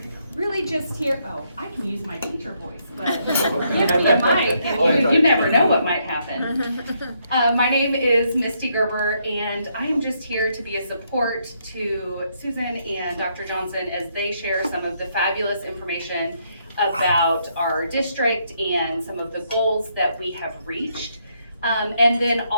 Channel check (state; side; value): inverted; both; correlation -0.74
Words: really just here, I can use my teacher voice, but give me a mic and you never know what might happen. My name is Misty Gerber and I am just here to be a support to Susan and Dr. Johnson as they share some of the fabulous information about our district and some of the goals that we have reached. And then